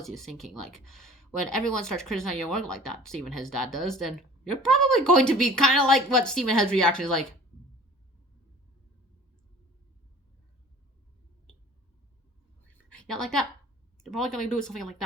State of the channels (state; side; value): normal; both; correlation 0.45